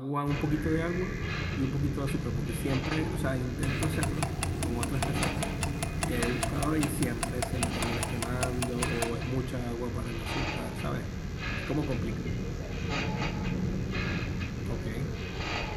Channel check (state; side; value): identical; both; correlation 1.00